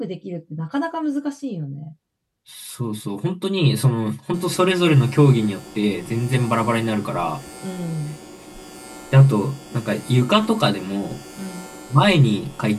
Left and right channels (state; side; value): identical; both; correlation 1.00